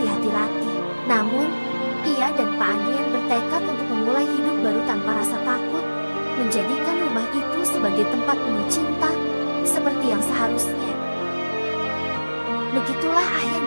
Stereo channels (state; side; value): inverted; both; correlation -1.00